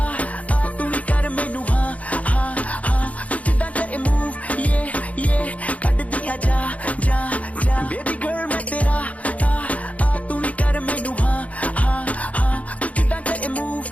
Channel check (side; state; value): right; late; 0.068 ms